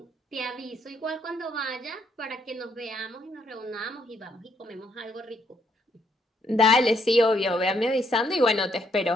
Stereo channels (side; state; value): both; normal; correlation 0.71